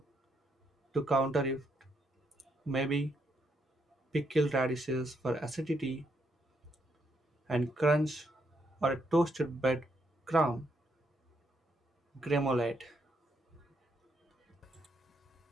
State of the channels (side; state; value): both; normal; correlation 0.76